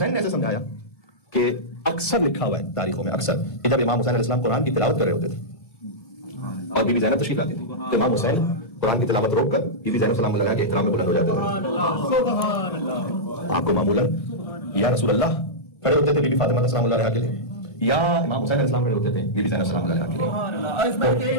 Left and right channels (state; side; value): late; right; 1.5 ms